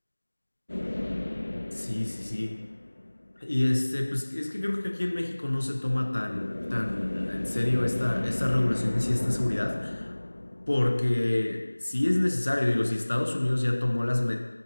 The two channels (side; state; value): both; inverted; correlation -1.00